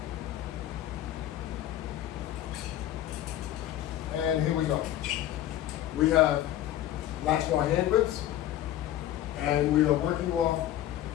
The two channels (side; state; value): right; quieter; 12.9 dB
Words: And here we go. We have Latchbar hand grips, and we are working off